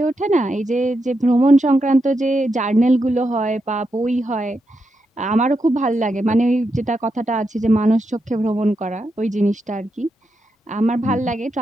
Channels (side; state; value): both; normal; correlation 0.85